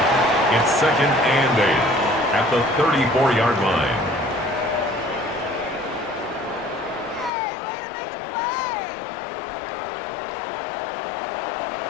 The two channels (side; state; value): right; drops out; at 7.3 s